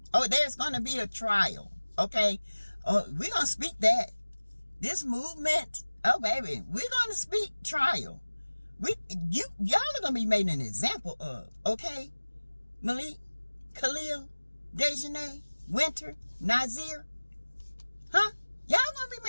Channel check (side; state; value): both; inverted; correlation -1.00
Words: Oh, there's going to be a trial, okay? Oh, we're going to speak that. This movement, oh baby, we're going to speak trial. Y'all are going to be made an example of, okay? Malik, Khalil, Dejanay, Winter, Nazir. Huh? Y'all going to